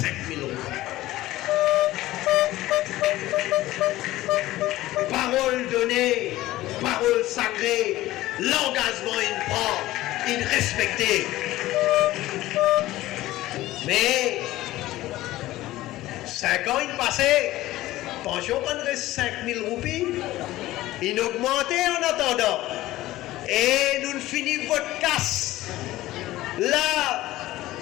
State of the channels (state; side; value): quieter; right; 16.4 dB